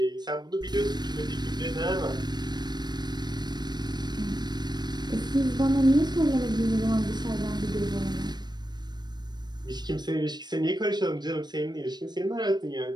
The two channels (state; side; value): late; left; 0.21 ms